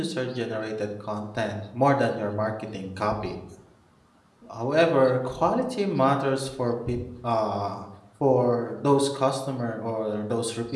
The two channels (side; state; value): both; identical; correlation 1.00